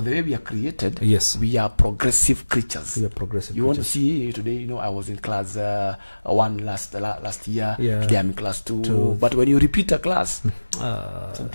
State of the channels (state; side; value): inverted; both; correlation -1.00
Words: the way we are created, yes, we are progressive creatures. We are progressive. You want to see today, you know, I was in class 1 last year. Yeah. Today I'm in class 2. But when you repeat a class,